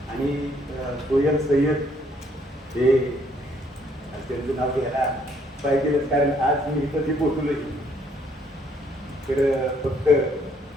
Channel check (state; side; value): normal; both; correlation 0.67